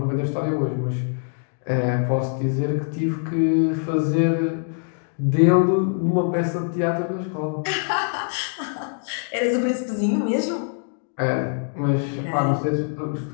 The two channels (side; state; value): right; silent; 57 dB below the other